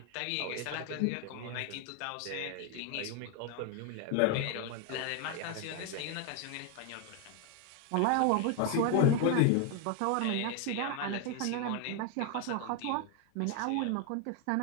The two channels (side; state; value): both; different; correlation 0.01